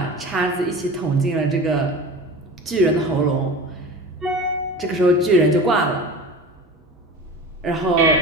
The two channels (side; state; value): both; normal; correlation 0.35